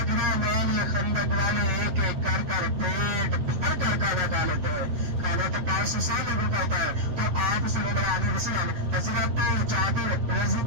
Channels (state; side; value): late; left; 8.1 ms